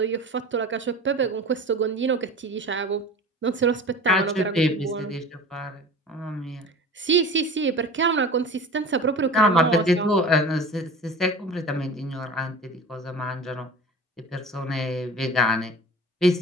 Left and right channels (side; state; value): both; normal; correlation 0.37